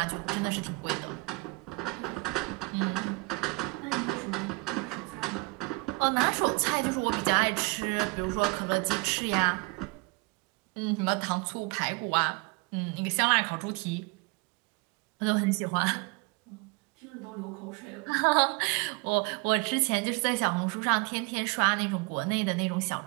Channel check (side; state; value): left; quieter; 27.9 dB